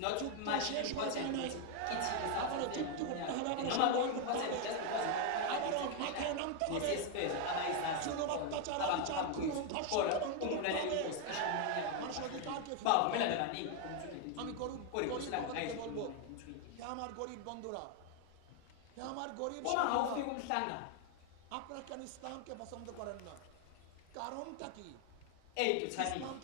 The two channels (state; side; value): different; both; correlation 0.01